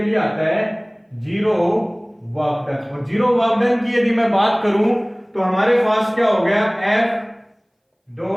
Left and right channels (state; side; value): identical; both; correlation 1.00